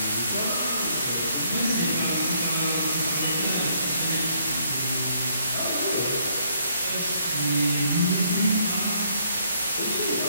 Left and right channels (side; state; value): both; inverted; correlation -0.69